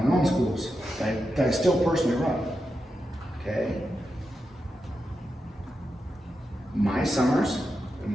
own schools that I still personally run. Okay? My summers in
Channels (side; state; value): both; normal; correlation 0.88